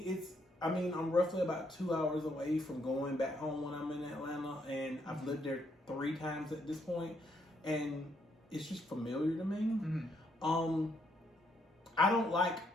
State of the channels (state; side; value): normal; both; correlation 0.73